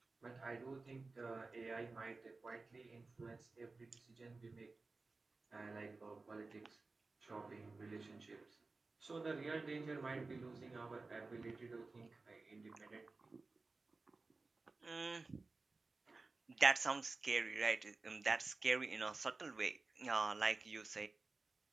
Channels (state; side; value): quieter; left; 3.7 dB